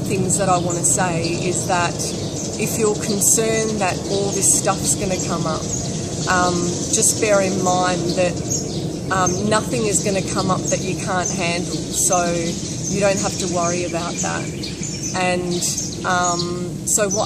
that I want to say is that if you're concerned that all this stuff's going to come up, just bear in mind that nothing is going to come up that you can't handle, so you don't have to worry about that. And so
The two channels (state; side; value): identical; both; correlation 1.00